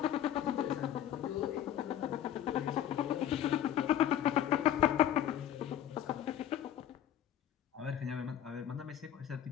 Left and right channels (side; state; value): right; quieter; 11.0 dB